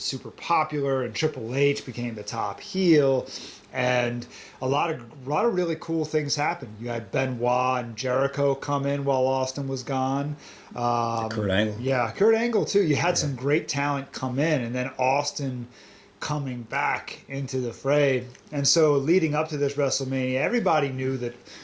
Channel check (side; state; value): both; identical; correlation 1.00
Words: super popular, and Triple H became the top heel, and a lot of really cool things happened. You had Benoit and Jericho come in while Austin was gone. Kurt Angle. Yeah, Kurt Angle too. You had some great talent come in, and then Austin coming back into the fray. And so leading up to this WrestleMania, everybody knew that